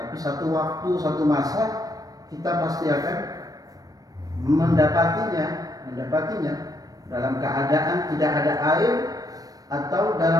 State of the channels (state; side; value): late; left; 0.18 ms